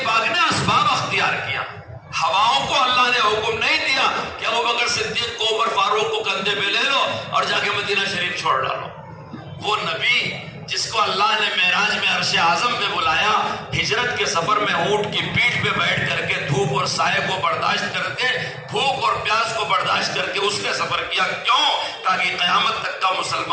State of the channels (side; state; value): both; identical; correlation 1.00